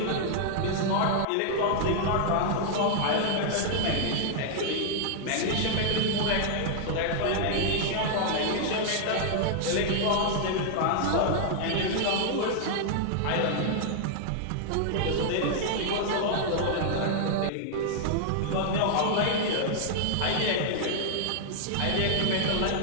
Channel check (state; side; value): different; both; correlation 0.00